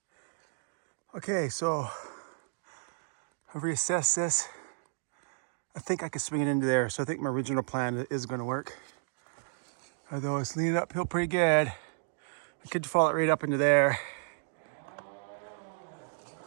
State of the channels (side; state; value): left; silent; digital silence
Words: Okay, so I've reassessed this. I think I could swing it into there, so I think my original plan is going to work. Although it's leaning uphill pretty good. I could fall it right up into there.